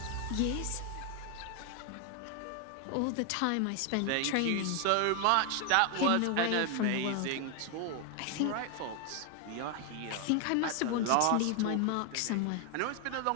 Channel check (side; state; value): both; different; correlation 0.00